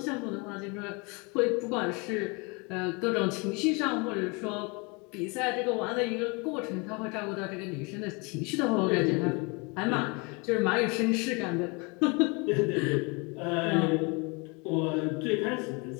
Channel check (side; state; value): right; quieter; 29.9 dB